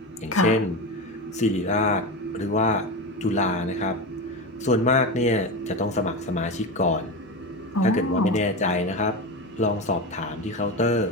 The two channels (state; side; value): normal; both; correlation 0.20